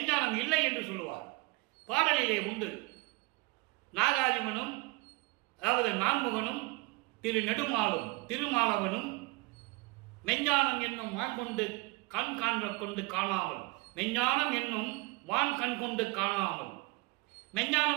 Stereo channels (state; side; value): quieter; left; 24.5 dB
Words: இல்லை என்று சொல்லுவார். பாடலிலே உண்டு. நாகாதிமனும், அதாவது நான்முகனும், திரு நெடுமாலும், திருமாலவனும் மெஞ்ஞானம் என்னும் வான் கொண்டு கண் காண்க கொண்டு காணாமல், மெஞ்ஞானம் என்னும் வான் கண் கொண்டு காணாமல்.